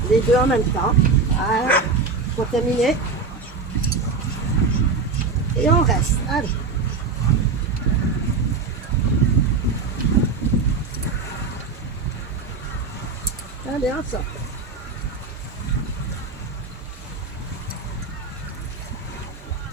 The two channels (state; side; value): quieter; left; 4.4 dB